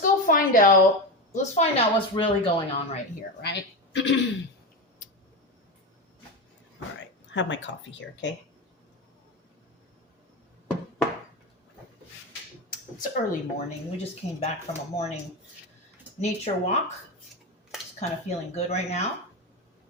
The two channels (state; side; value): normal; both; correlation 0.18